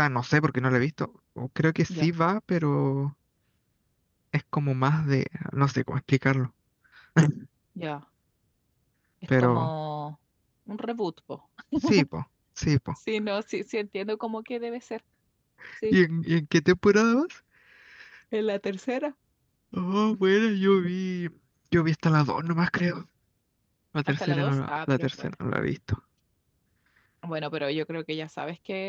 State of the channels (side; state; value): both; identical; correlation 1.00